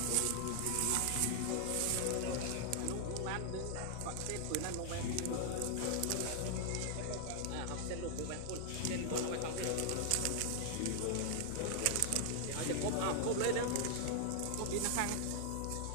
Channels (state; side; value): different; both; correlation 0.00